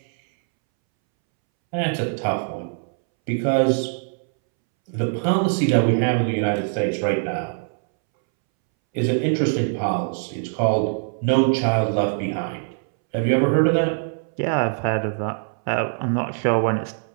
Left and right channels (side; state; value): left; silent; 64 dB below the other